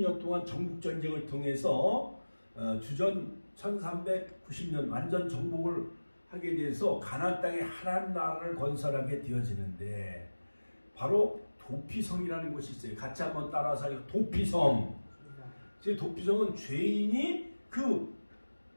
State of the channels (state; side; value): inverted; both; correlation -1.00